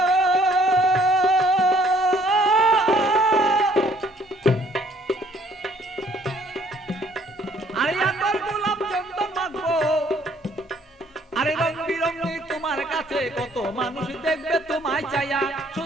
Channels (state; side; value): normal; both; correlation 0.61